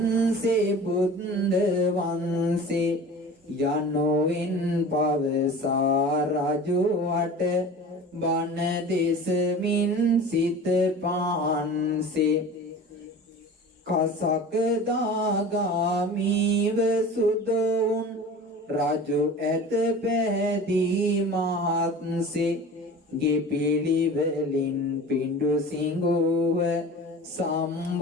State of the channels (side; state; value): both; normal; correlation 0.38